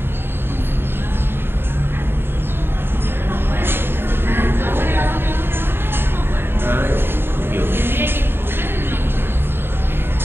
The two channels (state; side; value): late; left; 0.11 ms